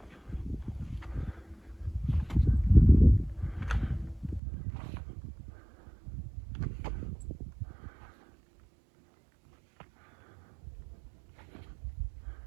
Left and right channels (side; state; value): left; drops out; at 4.4 s